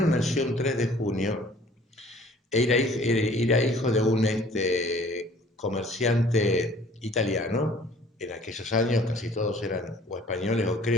nació un 3 de junio, era hijo de un comerciante italiano. En aquellos años casi todos eran o españoles o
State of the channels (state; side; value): normal; both; correlation 0.53